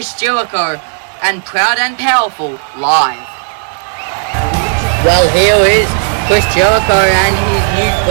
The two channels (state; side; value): silent; left; digital silence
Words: Jericho and Proud and Powerful live. Well, here is Chris Jericho and his new